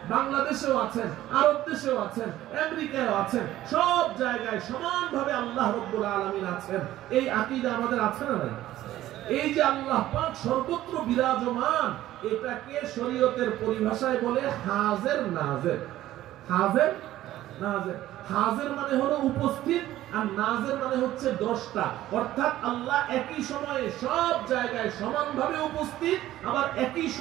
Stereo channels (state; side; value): quieter; left; 14.3 dB